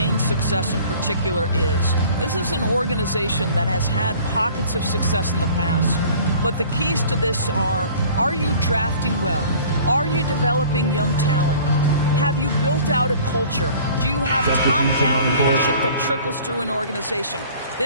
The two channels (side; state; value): both; inverted; correlation -0.48